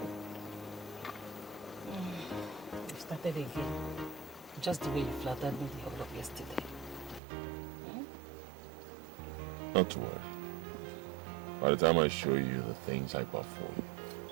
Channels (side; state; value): left; drops out; at 7.2 s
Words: You started again. Just the way you flattered me the whole of yesterday. Not to worry. By the time I show you the things I perform,